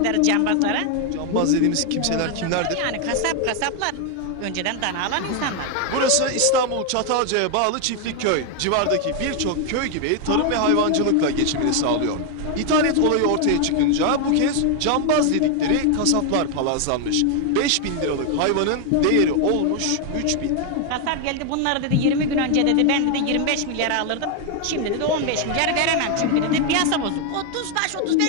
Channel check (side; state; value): both; different; correlation 0.01